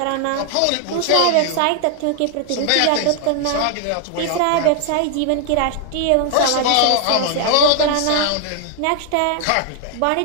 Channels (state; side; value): different; both; correlation 0.00